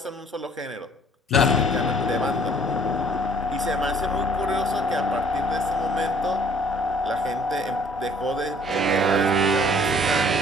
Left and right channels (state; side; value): normal; both; correlation 0.57